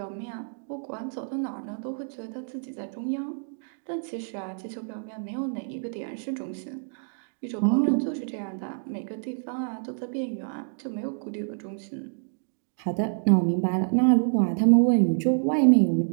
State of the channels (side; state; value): left; silent; digital silence